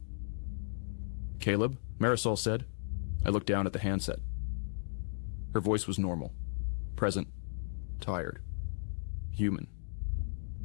"Caleb?" Marisol said. I looked down at the handset. Her voice was normal. Present. Tired. Human.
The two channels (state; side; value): silent; right; digital silence